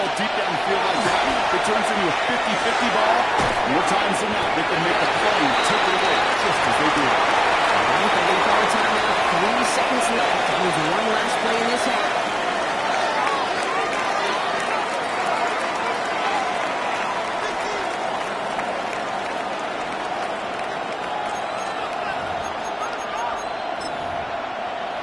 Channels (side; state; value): both; identical; correlation 1.00